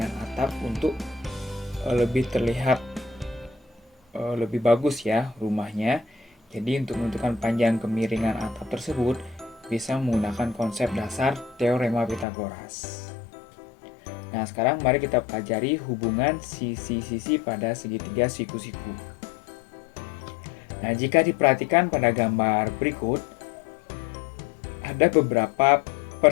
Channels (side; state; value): right; drops out; at 12.2 s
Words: atap untuk lebih terlihat lebih bagus ya rumahnya. Jadi untuk menentukan panjang kemiringan atap tersebut bisa menggunakan konsep dasar teorema Pitagoras. Nah, sekarang mari kita pelajari hubungan sisi-sisi pada segitiga siku-siku. Nah, jika diperhatikan pada gambar berikut, ada beberapa